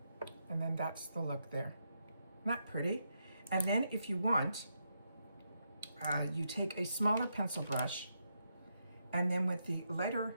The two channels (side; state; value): both; inverted; correlation -0.82